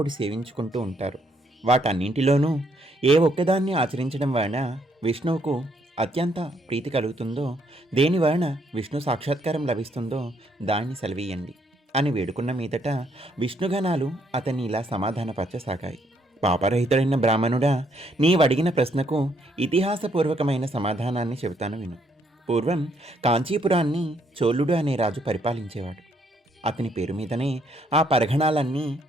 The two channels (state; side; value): normal; both; correlation 0.71